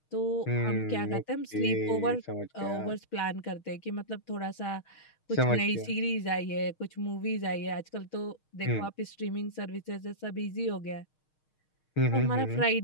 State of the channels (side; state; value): right; late; 6.5 ms